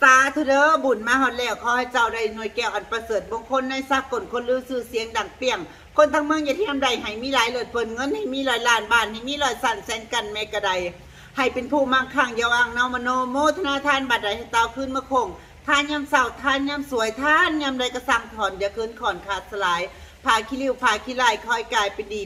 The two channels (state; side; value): identical; both; correlation 1.00